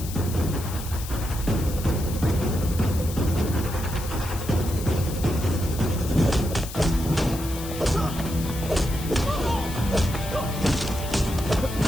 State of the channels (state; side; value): noise; left; hiss, 12 dB below the sound